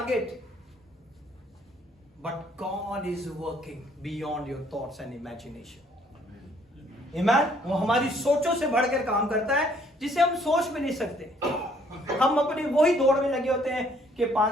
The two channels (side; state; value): both; normal; correlation 0.63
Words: But God is working beyond your thoughts and imagination. Amen? वो हमारी सोचों से बढ़कर काम करता है जिसे हम सोच भी नहीं सकते. हम अपनी वही दौड़ में लगे होते हैं कि